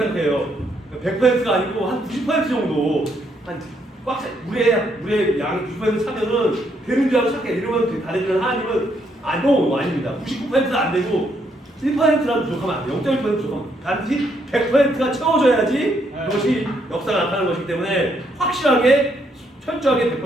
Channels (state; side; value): normal; both; correlation 0.73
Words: 생각해요. 100%가 아니고 한 90% 정도 물에 양이 90% 차면은 되는 줄 알고 착해. 이러면 다르지만 하나님은 아닙니다. 99%는 안 되고 1%라도 부족하면 안 돼요. 0.1% 부족하면 반드시 100%가 채워져야지 그것이 역사가 나타나는 것이기 때문에 확실하게 철저하게